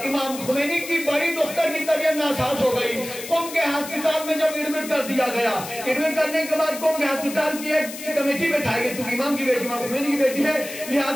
امام خمینی کی بڑی دختر کی طبیعت ناساز ہو گئی، قم کے ہسپتال میں جب ایڈمٹ کر دیا گیا. ایڈمٹ کرنے کے بعد قوم کے ہسپتال کی ایک کمیٹی بٹھائی گئی, چونکہ امام کی بیٹی امام خمینی کی بیٹی ہے,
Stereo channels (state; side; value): noise; left; hiss, 11 dB below the sound